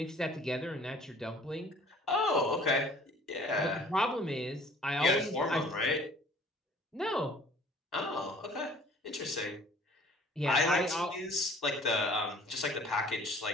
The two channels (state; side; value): normal; both; correlation 0.52